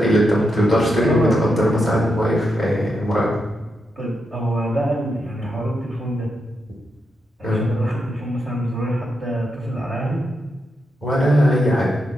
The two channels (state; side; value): normal; both; correlation 0.84